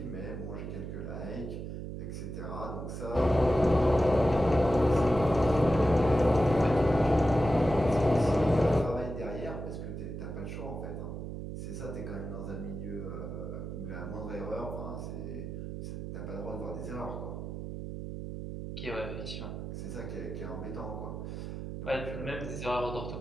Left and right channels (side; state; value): right; noise; hum, 7 dB below the sound